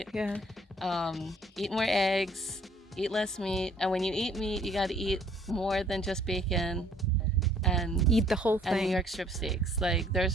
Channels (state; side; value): normal; both; correlation 0.60